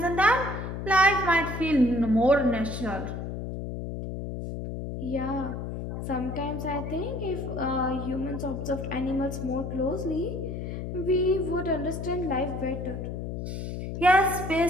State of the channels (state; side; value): noise; left; hum, 5 dB below the sound